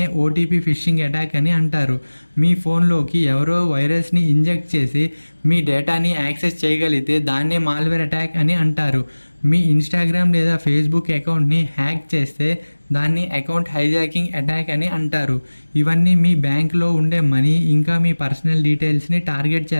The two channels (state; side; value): inverted; both; correlation -1.00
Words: ఓటీపీ ఫిషింగ్ అటాక్ అని అంటారు. మీ ఫోన్లోకి ఎవరో వైరస్ని ఇంజెక్ట్ చేసి మీ డేటాని యాక్సెస్ చేయగలిగితే దాన్నే మాల్వేర్ అటాక్ అని అంటారు. మీ ఇన్స్టాగ్రామ్ లేదా ఫేస్బుక్ అకౌంట్ని హ్యాక్ చేస్తే దాన్ని అకౌంట్ హైజాకింగ్ అటాక్ అని అంటారు. ఇవన్నీ మీ బ్యాంక్లో ఉండే మనీ ఇంకా మీ పర్సనల్ డీటెయిల్స్ని టార్గెట్